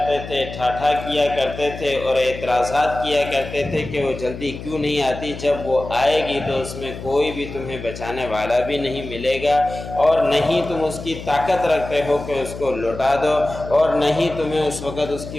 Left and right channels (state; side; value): noise; left; hum, 11 dB below the sound